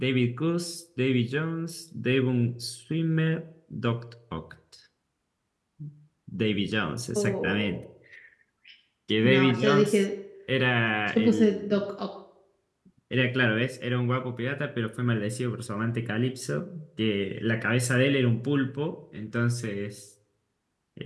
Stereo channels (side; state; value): both; identical; correlation 1.00